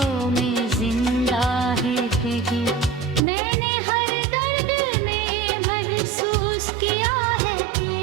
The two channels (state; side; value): drops out; left; at 3.2 s